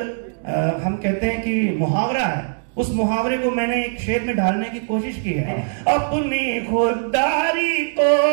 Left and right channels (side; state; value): left; silent; digital silence